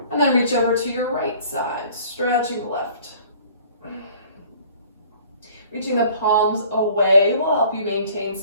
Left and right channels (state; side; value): inverted; both; correlation -0.52